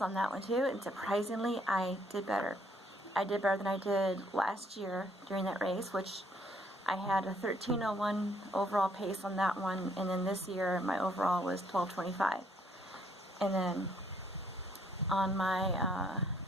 on that one too, and surprisingly, I did better. I did better than I did last year during that race, which I had a 13:01 overall pace on that one, and then this year my overall was 12:25. And then on my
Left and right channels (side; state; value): both; normal; correlation 0.67